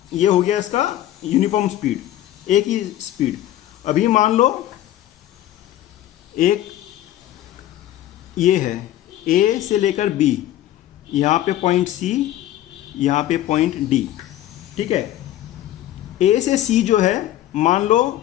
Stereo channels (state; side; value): quieter; right; 13.3 dB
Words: ये हो गया इसका यूनिफॉर्म स्पीड, एक ही स्पीड। अभी मान लो एक ये है ए से लेकर बी, यहाँ पे पॉइंट सी, यहाँ पे पॉइंट डी। ठीक है, ए से सी जो है मान लो